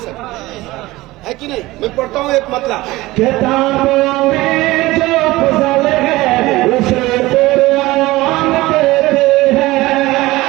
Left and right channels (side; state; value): left; quieter; 19.1 dB